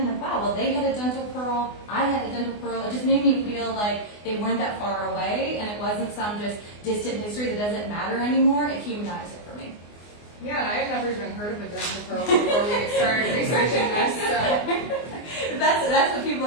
like, wow, well, they had a dental pearl, I had a dental pearl. It just made me feel like they weren't that far away, and it wasn't some just distant history that doesn't matter anymore. It humanized it for me. Yeah, and I had never even heard of a dental pearl before we started researching this. So. That's what people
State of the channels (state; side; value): late; right; 24 ms